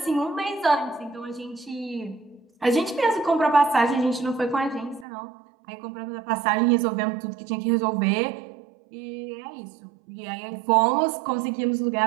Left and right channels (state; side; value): drops out; left; at 5.1 s